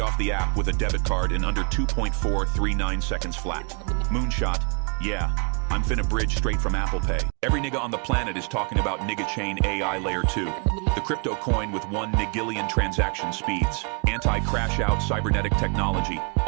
off the app with a debit card in under 2.439 seconds flat. Moonshot, yeah, I'm finna bridge straight from Apple Pay. Every nigga on the planet is talking about Nigga Chain AI layer 2. The crypto coin with 1 nigillion transaction speeds. Anti-crash out cybernetic technology.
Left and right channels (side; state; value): left; quieter; 36.0 dB